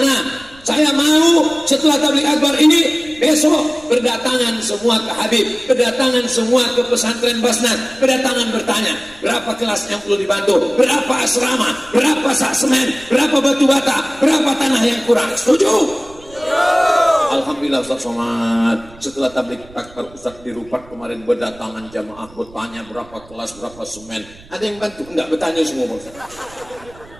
Saya mau setelah tabligh akbar ini besok berdatangan semua ke Habib, berdatangan semua ke pesantren Basnas, berdatangan bertanya berapa kelas yang perlu dibantu, berapa asrama, berapa sak semen, berapa batu bata, berapa tanah yang kurang. Setuju? Alhamdulillah Ustaz Somad, setelah tabligh akbar Ustaz di Rupat kemarin berdatangan jamaah bertanya berapa kelas, berapa semen. Ada yang bantu? Enggak, bertanya semua Ustaz.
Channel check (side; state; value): right; noise; rumble, 23 dB below the sound